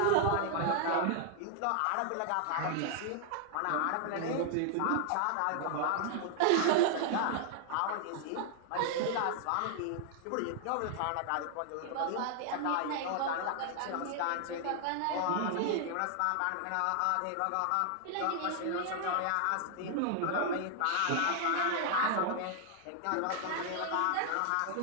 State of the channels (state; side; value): different; both; correlation 0.00